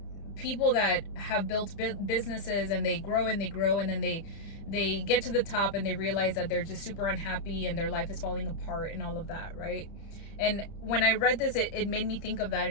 people that have built businesses and they grow and then they get to the top and they realize that they're just super unhappy and their life is falling apart and all of that, right? And when I read this, it made me think of that,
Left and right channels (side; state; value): right; late; 30 ms